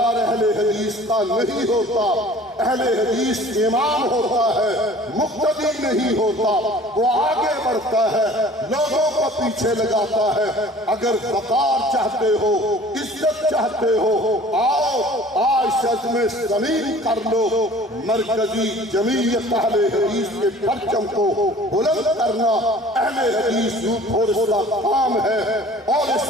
اہل حدیث کا نہیں ہوتا۔ اہل حدیث امام ہوتا ہے، مقتدی نہیں ہوتا، وہ آگے بڑھتا ہے، لوگوں کو پیچھے لگاتا ہے۔ اگر وقار چاہتے ہو، عزت چاہتے ہو، آؤ آج شزم زمین کر لو۔ مرکزی جمعیت اہل حدیث کے پرچم کو بلند کرنا اہل حدیث یوتھ فورس کا کام ہے، اور اس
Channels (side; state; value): both; normal; correlation 0.48